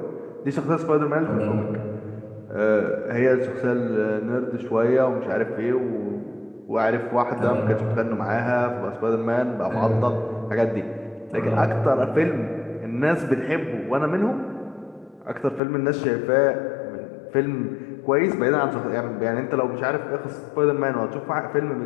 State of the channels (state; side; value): drops out; right; at 15.6 s